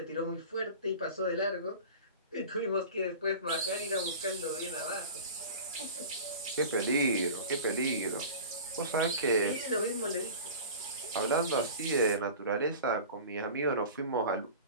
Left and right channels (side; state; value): both; inverted; correlation -0.37